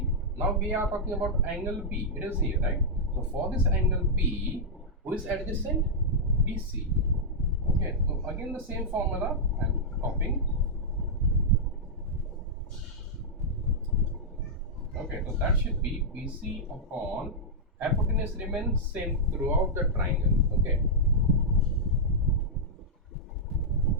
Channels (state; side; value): normal; both; correlation -0.07